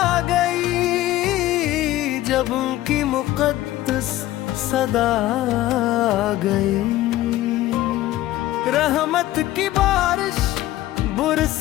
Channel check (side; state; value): right; quieter; 15.3 dB